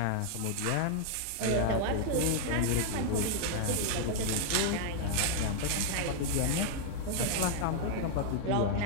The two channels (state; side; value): different; both; correlation 0.00